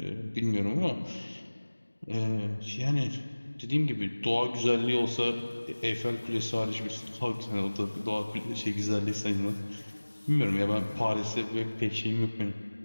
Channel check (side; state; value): both; inverted; correlation -1.00